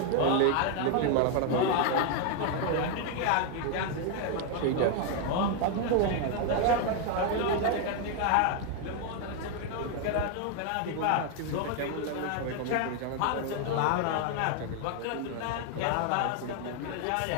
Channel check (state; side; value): different; both; correlation 0.01